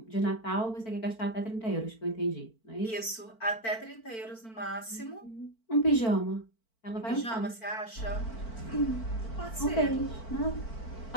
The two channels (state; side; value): late; right; 4.5 ms